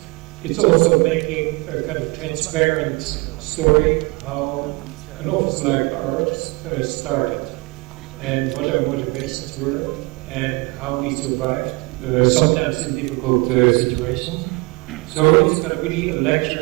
It's also making a kind of transparent story how an office like ours started and what our motivations were and how we survived, sometimes in difficult situations. So it's going to be a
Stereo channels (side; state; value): left; quieter; 26.0 dB